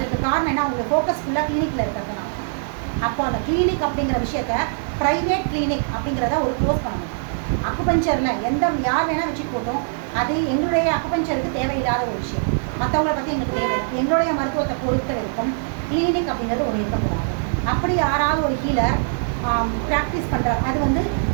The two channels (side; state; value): left; silent; digital silence